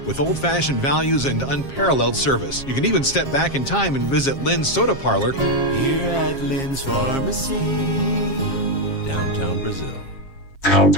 with old-fashioned values and unparalleled service. You can even step back in time and visit Lynn's Soda Parlor here at Lynn's Pharmacy, downtown Brazil.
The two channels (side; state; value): right; late; 7.4 ms